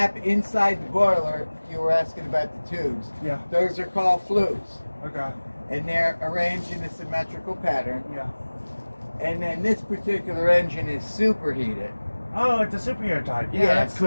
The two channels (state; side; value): inverted; both; correlation -1.00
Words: inside the boiler, you were asking about the tubes. Yeah. Those are called flues. Okay. And they're arranged in a symmetrical pattern. Yeah. And then this particular engine is superheated. Oh, it's a superheater type. Yeah, that's so